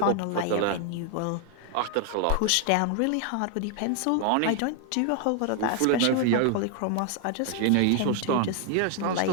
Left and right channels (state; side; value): different; both; correlation 0.00